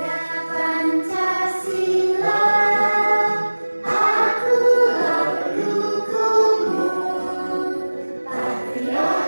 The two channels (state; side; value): inverted; both; correlation -1.00